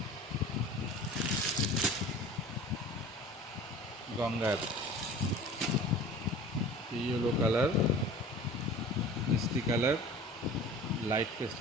গঙ্গার ইয়েলো কালার, মিষ্টি কালার, লাইট পেস্ট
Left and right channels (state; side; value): normal; both; correlation 0.41